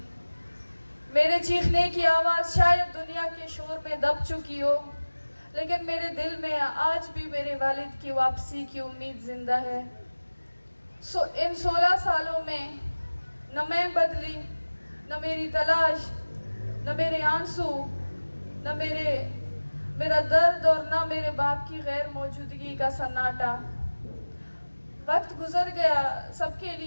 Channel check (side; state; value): both; inverted; correlation -1.00